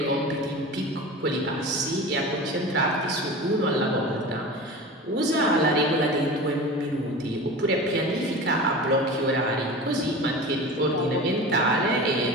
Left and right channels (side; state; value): both; normal; correlation 0.32